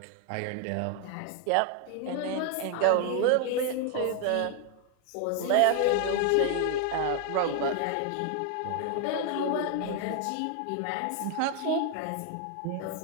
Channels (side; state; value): both; different; correlation 0.00